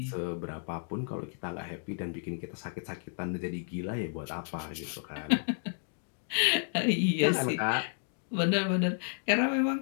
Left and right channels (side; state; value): right; silent; digital silence